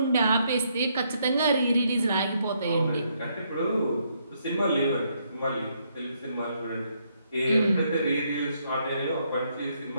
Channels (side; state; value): both; inverted; correlation -0.73